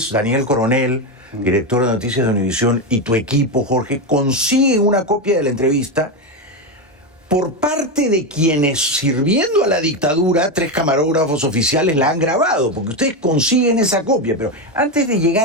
Daniel Coronel, director de Noticias de Univisión, y tu equipo, Jorge, consiguen una copia de la entrevista por parte de quienes, sirviendo a la dictadura, 3 camarógrafos oficiales la han grabado, porque ustedes consiguen esa copia. Pero antes de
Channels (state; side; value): normal; both; correlation 0.11